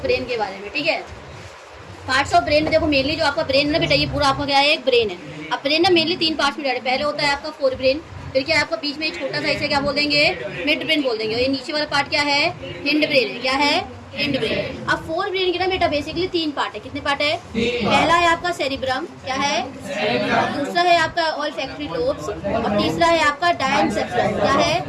ब्रेन के बारे में। ठीक है, पार्ट्स ऑफ ब्रेन में देखो मेनली जो आपका ब्रेन है ना बेटा, ये पूरा आपका क्या है, एक ब्रेन है। अब ब्रेन ना मेनली 3 पार्ट्स में डिवाइड है। पहले होता है आपका फोर ब्रेन, फिर क्या आपका बीच में एक छोटा सा इसे क्या बोल देंगे, मिड ब्रेन बोल देंगे। और ये नीचे वाला पार्ट क्या है, हिंड ब्रेन है। क्या है, हिंड ब्रेन। अब फोर ब्रेन के ना बेटा बेसिकली 3 पार्ट है। कितने पार्ट है? पहला है आपका सेरिब्रम, क्या है, दूसरा है आपका ऑल्फैक्टरी लोब्स, और तीसरा है आपका डायनसेफ्लॉन। क्या है?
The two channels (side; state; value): both; identical; correlation 1.00